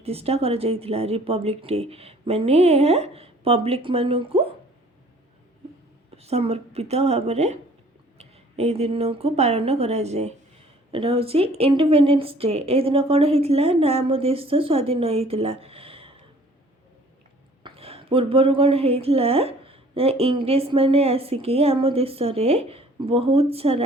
କରାଯାଇଥିଲା। ରିପବ୍ଲିକ୍ ଡେ ମାନେ ଏହା ପବ୍ଲିକ୍ ମାନଙ୍କୁ ସମର୍ପିତ ଭାବରେ ଏହି ଦିନକୁ ପାଳନ କରାଯାଏ। ଏଇଟା ହେଉଛି ଇଣ୍ଡିପେଣ୍ଡେନ୍ସ ଡେ। ଏହି ଦିନ କ'ଣ ହେଇଥିଲା ନା ଆମ ଦେଶ ସ୍ୱାଧୀନ ହେଇଥିଲା। ପୂର୍ବରୁ କ'ଣ ହେଇଥିଲା ନା ଇଂରେଜମାନେ ଆସିକି ଆମ ଦେଶରେ ବହୁତ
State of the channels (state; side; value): normal; both; correlation 0.54